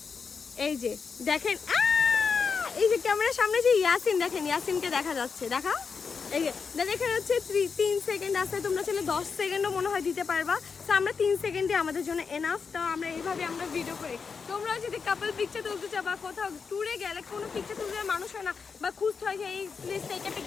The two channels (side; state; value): right; quieter; 5.5 dB